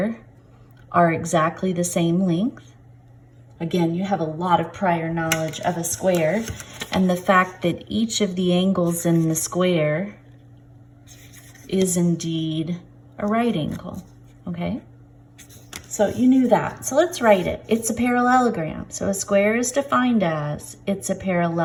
are exactly the same length. Again, you have a lot of prior knowledge of a square, and the fact that each of the angles in the square is indeed a right angle, okay? So you knew that. So let's write it. It's a parallelogram. So a square is defined as, it's a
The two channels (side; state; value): both; identical; correlation 1.00